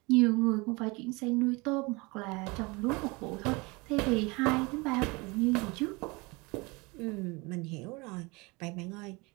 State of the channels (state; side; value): quieter; left; 26.1 dB